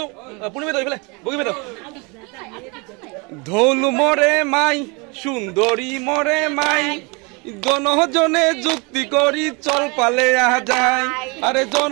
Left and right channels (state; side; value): quieter; left; 29.7 dB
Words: পূর্ণিমা এইফালে বগিমে ঢোল মরে মাই সুন্দরী মরে মাই জনজনে যুক্তি করি চল পালে আহা যায় আরে